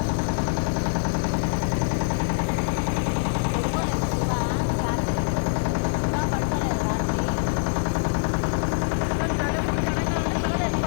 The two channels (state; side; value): silent; right; digital silence